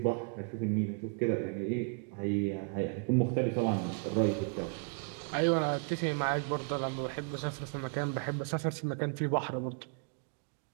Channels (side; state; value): left; quieter; 38.1 dB